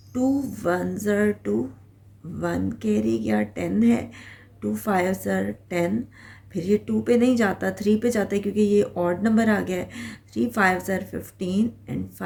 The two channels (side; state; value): both; identical; correlation 1.00